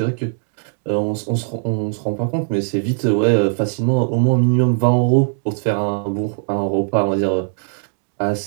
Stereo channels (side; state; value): left; silent; digital silence